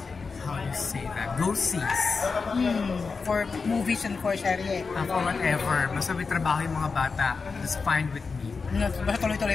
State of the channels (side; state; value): right; quieter; 4.7 dB